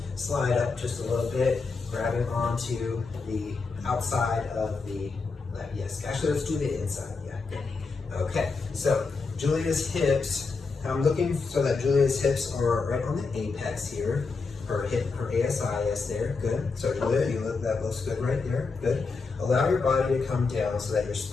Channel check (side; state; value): right; quieter; 4.4 dB